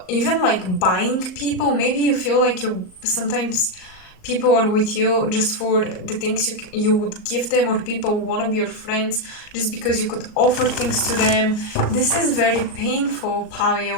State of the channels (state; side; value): late; right; 38 ms